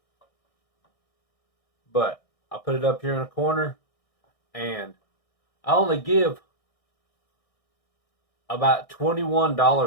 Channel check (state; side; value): late; right; 1.6 ms